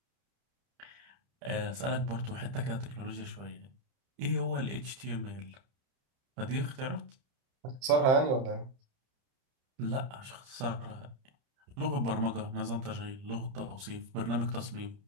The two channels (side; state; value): left; late; 30 ms